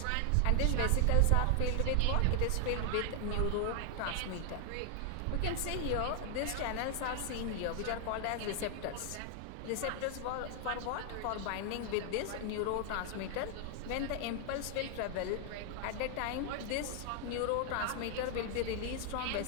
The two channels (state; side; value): different; both; correlation 0.00